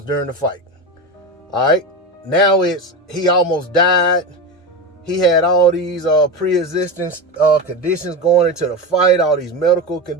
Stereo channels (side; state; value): both; normal; correlation 0.20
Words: during the fight. All right. Now it's, he almost died. He had all these pre-existing conditions going into the fight, all these medical